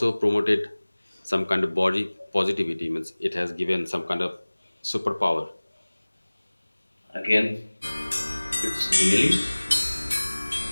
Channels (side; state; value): both; inverted; correlation -1.00